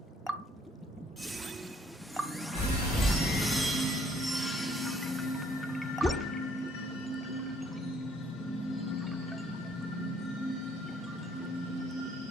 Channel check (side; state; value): both; normal; correlation 0.64